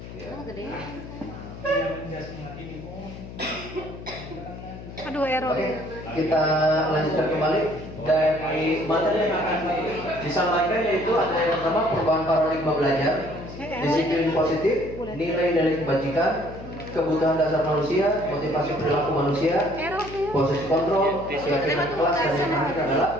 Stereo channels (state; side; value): noise; left; hum, 13 dB below the sound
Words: Ya. Aduh error. Oke, kita lanjutkan kembali dari materi yang akan disampaikan, yaitu ada yang pertama perubahan paradigma belajar, disiplin positif, nilai dari kebajikan, kebutuhan dasar manusia, motivasi perilaku manusia, proses kontrol, keyakinan kelas, dan yang terakhir adalah